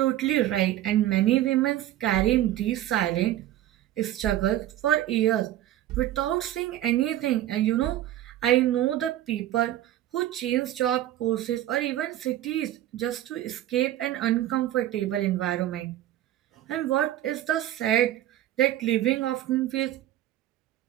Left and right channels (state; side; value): quieter; left; 13.3 dB